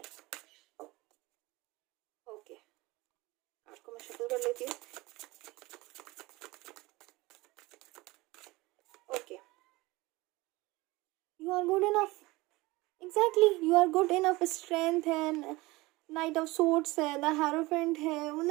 ओके, कार्ड को मैं शफल कर लेती हूँ। Okay, you are good enough, exactly you are good enough. Strength है, नाइट ऑफ सोर्ड्स है, द हेरोफेंट है,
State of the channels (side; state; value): left; quieter; 21.4 dB